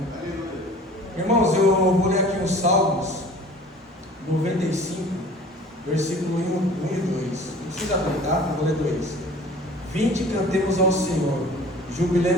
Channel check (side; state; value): both; normal; correlation 0.46